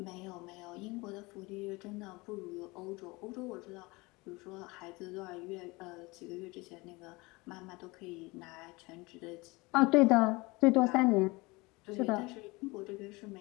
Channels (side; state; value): right; quieter; 24.0 dB